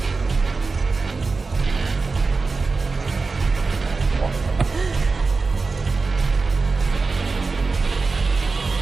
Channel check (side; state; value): left; quieter; 4.1 dB